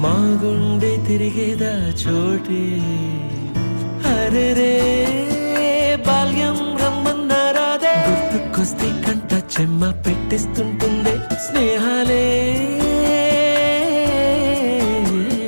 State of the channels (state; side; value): inverted; both; correlation -1.00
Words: మా గుండె తిరిగేదా చోటే అరెరే బాల్యం రమ్మన్నారాదే గుర్తుకొస్తే కంట చెమ్మ పెట్టిస్తుంటుందే స్నేహాలే